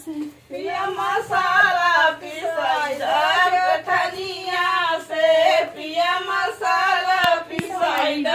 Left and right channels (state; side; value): identical; both; correlation 1.00